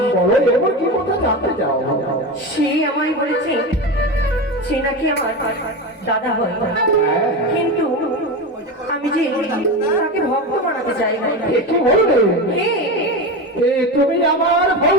বলো, এবার কি কথা জানতে চাও? সে আমায় বলেছে সে নাকি আমার দাদা হয়, কিন্তু আমি যে তাকে ভক্ত বানাতে চাই। এ কি বলবে? হে, এ তুমি আমার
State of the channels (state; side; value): normal; both; correlation 0.21